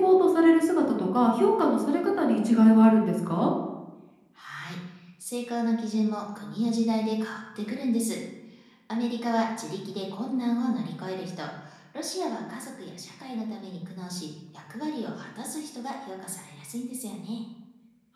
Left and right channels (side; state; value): both; identical; correlation 1.00